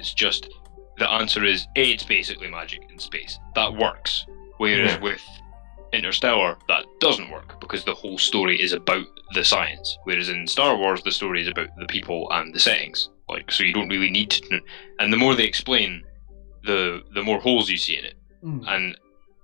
just the answer is it's basically magic in space. That works. Whereas with Interstellar, that doesn't work because the whole story is about the science. Whereas in Star Wars, the story is about the people and the settings. Like, so you don't really need to. And the more they explain, the more holes you see in it, and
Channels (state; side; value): quieter; right; 38.6 dB